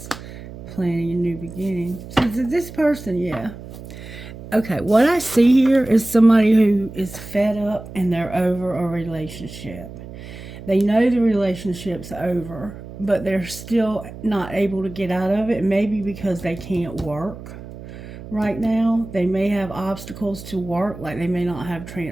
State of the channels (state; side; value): noise; right; hum, 14 dB below the sound